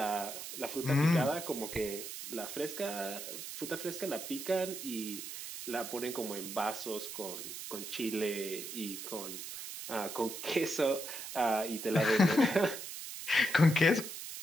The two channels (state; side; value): noise; right; hiss, 8 dB below the sound